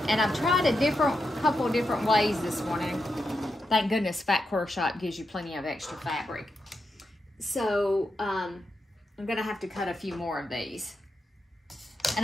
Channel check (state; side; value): normal; both; correlation 0.86